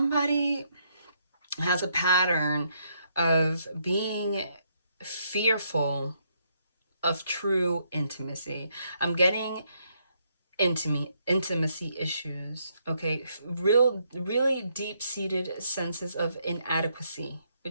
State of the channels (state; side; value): inverted; both; correlation -0.75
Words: has a pattern of being fearful of true intimacy. I'm getting intimacy issues, okay? Really deep-seated senses of inadequacy,